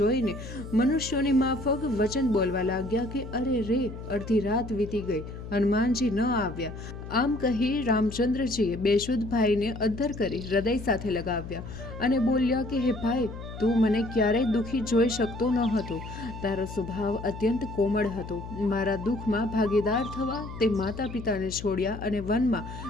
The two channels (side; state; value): left; noise; hum, 11 dB below the sound